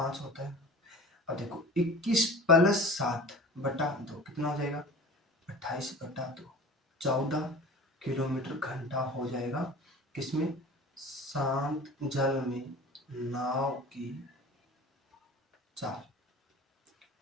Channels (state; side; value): normal; both; correlation 0.39